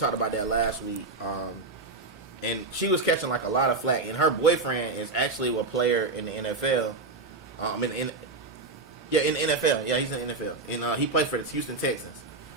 about that last week. And she was catching like a lot of flack. And her boyfriend is actually a player in the NFL. In the NFL. Yeah, he's in the NFL. And he played for the Houston Texans.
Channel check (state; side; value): quieter; left; 3.5 dB